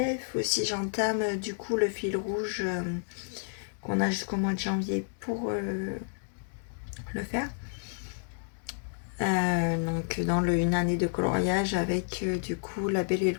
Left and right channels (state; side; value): silent; right; digital silence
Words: ou si j'entame du coup le fil rouge qu'on a jusqu'au mois de janvier pour le faire. Donc dans une année de coloriage avec du coup la Belle et le